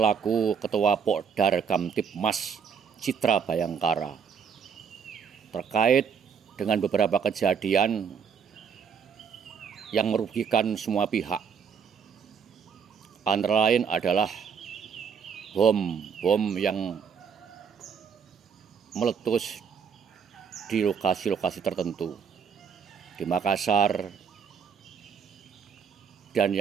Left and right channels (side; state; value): left; quieter; 6.8 dB